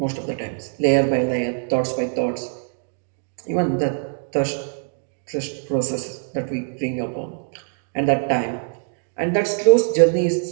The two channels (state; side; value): silent; left; digital silence